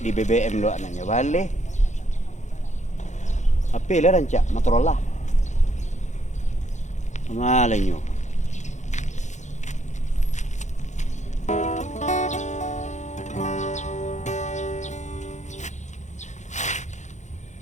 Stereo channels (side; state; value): right; late; 0.34 ms